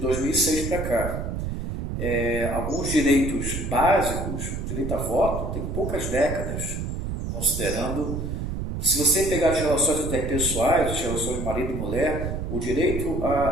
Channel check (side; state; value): right; noise; rumble, 4 dB below the sound